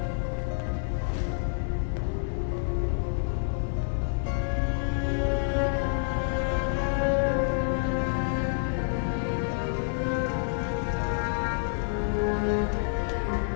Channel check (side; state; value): right; silent; 59 dB below the other